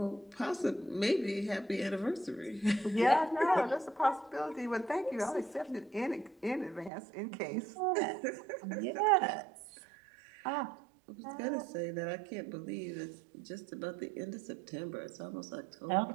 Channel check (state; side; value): drops out; left; at 6.9 s